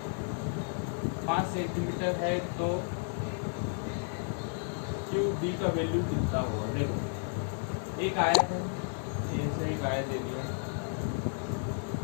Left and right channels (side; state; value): right; silent; 56 dB below the other